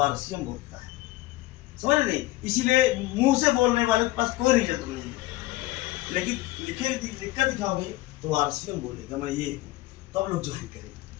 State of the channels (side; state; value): right; quieter; 18.4 dB